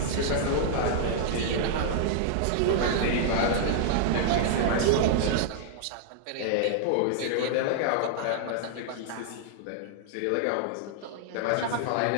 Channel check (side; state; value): both; different; correlation -0.01